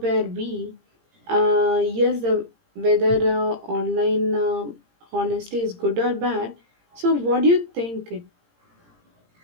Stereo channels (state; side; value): late; left; 17 ms